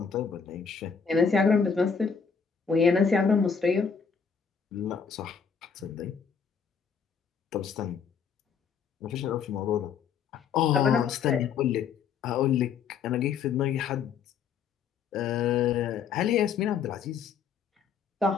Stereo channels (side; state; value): right; quieter; 6.5 dB